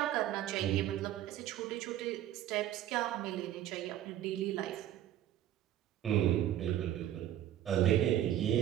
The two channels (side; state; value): left; quieter; 12.0 dB